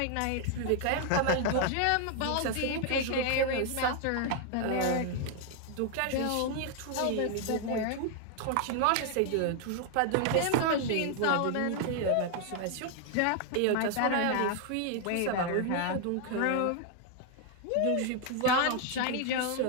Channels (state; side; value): different; both; correlation 0.00